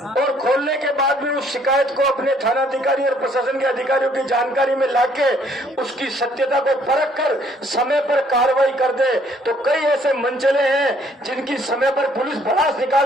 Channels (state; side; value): normal; both; correlation 0.63